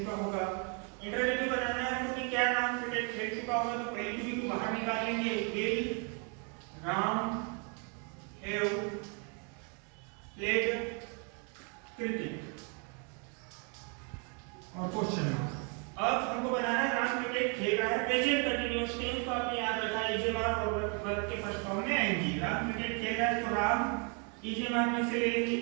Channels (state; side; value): quieter; left; 37.0 dB